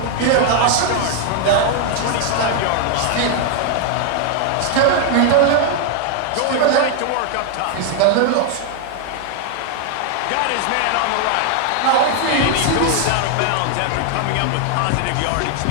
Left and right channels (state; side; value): different; both; correlation 0.00